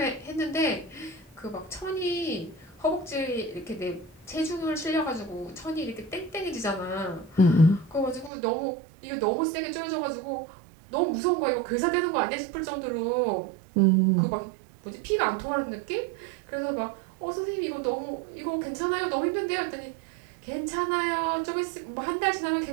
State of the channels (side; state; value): left; drops out; at 8.3 s